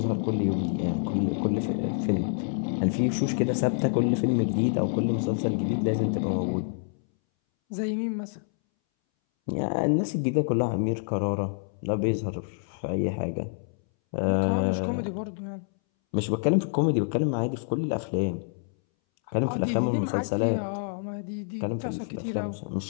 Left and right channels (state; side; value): silent; right; 60 dB below the other